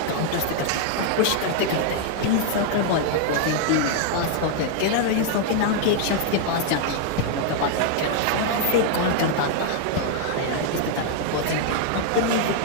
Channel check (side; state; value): both; different; correlation 0.00